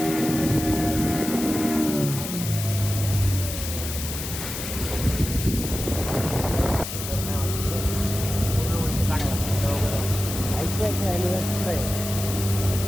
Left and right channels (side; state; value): left; noise; hiss, 7 dB below the sound